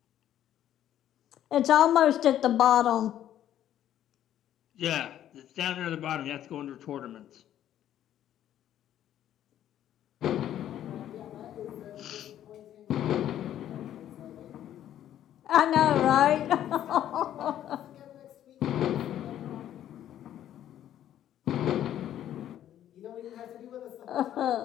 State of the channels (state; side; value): quieter; right; 11.4 dB